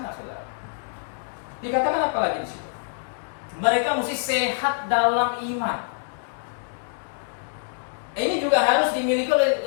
saudara. Dikatakan apa lagi di situ? Mereka mesti sehat dalam iman. Ini juga harus dimiliki oleh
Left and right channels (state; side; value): silent; right; digital silence